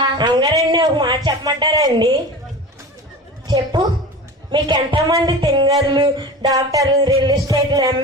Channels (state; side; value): normal; both; correlation 0.33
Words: అమ్మగారండి, ఒక మాట చెప్పమంటారా అండి? చెప్పు. మీకు ఎంతమంది తింగర్లు, డాక్టర్లు, రియల్ ఎస్టేట్లు,